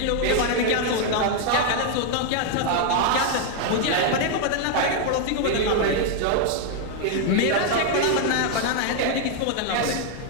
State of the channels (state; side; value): different; both; correlation 0.00